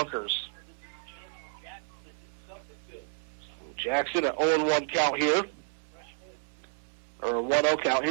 Jackson at 0-1 count here. Or 1-0 count.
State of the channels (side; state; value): left; silent; 57 dB below the other